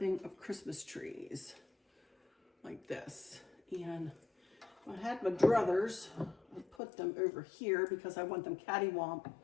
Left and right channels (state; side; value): drops out; right; at 6.8 s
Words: of Christmas trees like this. And I had my druthers. I put them over here because I want them cattywomp